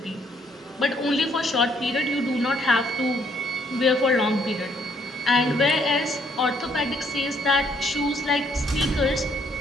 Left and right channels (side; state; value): both; normal; correlation 0.68